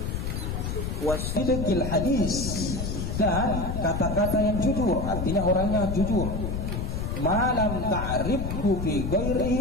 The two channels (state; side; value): noise; left; rumble, 3 dB below the sound